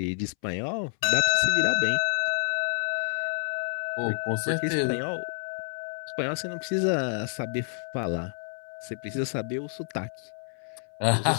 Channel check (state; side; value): silent; right; 59 dB below the other